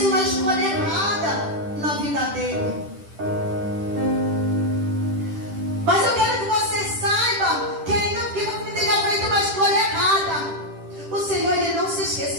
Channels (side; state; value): left; late; 10 ms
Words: uma escolha errada na vida dele. Mas eu quero que você saiba que ainda que você tenha feito uma escolha errada, o Senhor, ele não se